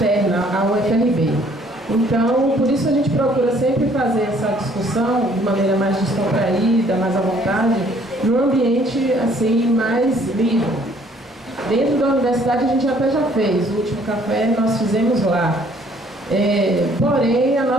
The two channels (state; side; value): normal; both; correlation 0.60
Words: ao UFRB. Então, por isso a gente procura sempre fazer essa discussão de maneira mais descontraída, mais à vontade, num ambiente assim mais livre. Dentro da universidade a gente até já fez, o último café nós fizemos lá. Porém, a